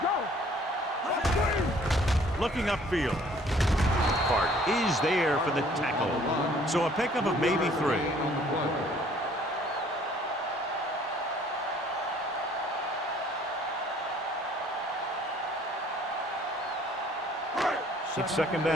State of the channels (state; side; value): normal; both; correlation 0.57